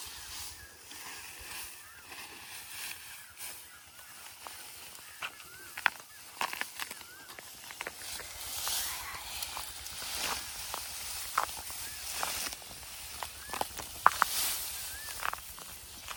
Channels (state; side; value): identical; both; correlation 1.00